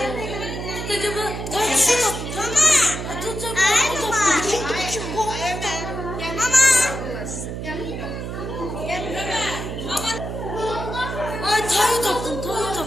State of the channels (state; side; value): noise; right; hum, 6 dB below the sound